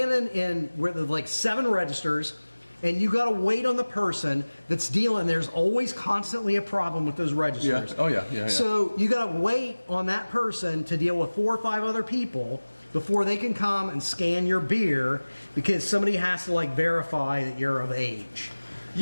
in where there's like 7 registers and you got to wait on the person that's dealing. There's always constantly a problem with those registers. Yeah. Oh, yeah. So you got to wait on that person to deal with 4 or 5 other people before they can come and scan your beer because somebody has to verify that you're of age.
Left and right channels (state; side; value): inverted; both; correlation -1.00